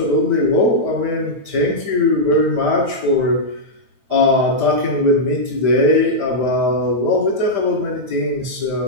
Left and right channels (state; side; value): late; left; 9.1 ms